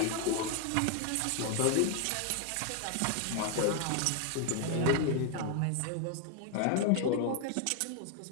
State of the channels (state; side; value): different; both; correlation 0.00